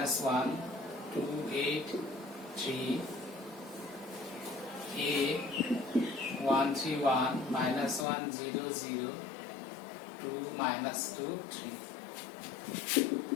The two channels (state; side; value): drops out; right; at 8.1 s